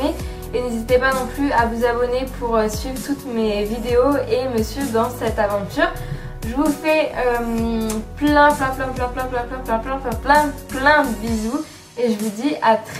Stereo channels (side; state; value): both; identical; correlation 1.00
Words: Et n'hésitez pas non plus à vous abonner pour suivre toutes mes vidéos et me suivre dans cette aventure. Je vous fais plein de bisous et je vous dis à